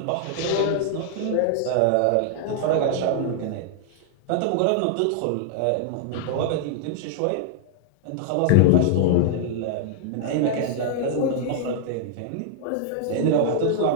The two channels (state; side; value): different; both; correlation -0.01